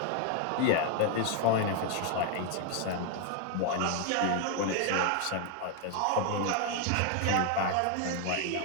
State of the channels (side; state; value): both; different; correlation 0.00